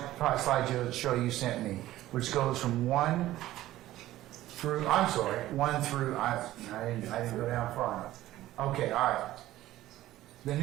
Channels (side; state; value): left; quieter; 15.1 dB